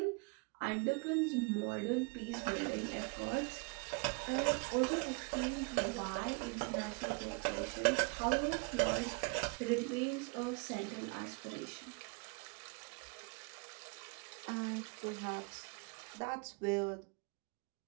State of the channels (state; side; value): quieter; left; 31.0 dB